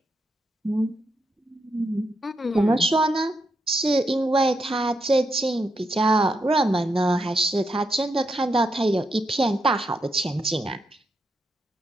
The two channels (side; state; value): both; normal; correlation 0.82